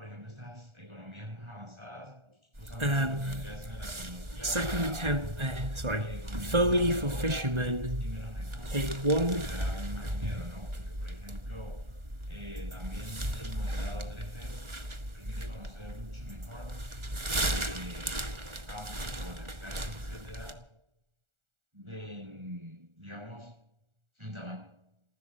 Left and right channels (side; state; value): left; late; 1.4 ms